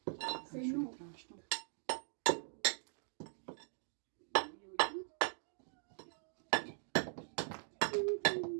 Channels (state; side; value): silent; left; digital silence